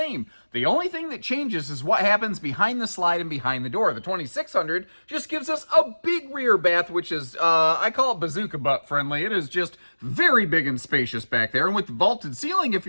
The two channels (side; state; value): both; inverted; correlation -1.00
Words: The only thing that changes is what happens behind the slide and behind the door. The 2600 just gives us a big rear bath, which is, I call it bazooka butt friendly. It is just very big and spacious back there. And with the vaulted ceiling, if